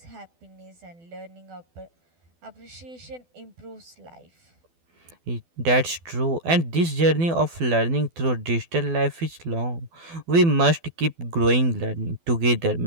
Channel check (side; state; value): left; late; 12 ms